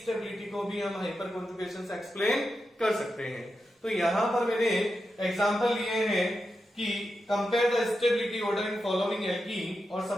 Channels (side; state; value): both; normal; correlation 0.88